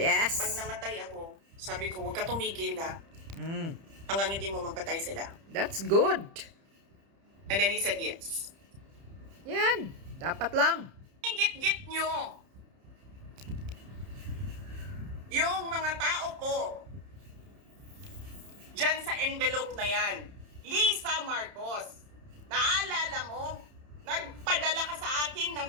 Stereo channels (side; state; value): left; late; 30 ms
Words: Pag namatay ako, sabi ko, huwag ka tumigil ha. Mm. Hanggang hindi mo mapatay sila. That's good. And then he said yes. Yan. Dapat lang. Git-git nyo. Yung mga tao ko, dyan sa envelope na yan, Lisa Marcos, naalala mo, nagpadala ka sa akin ng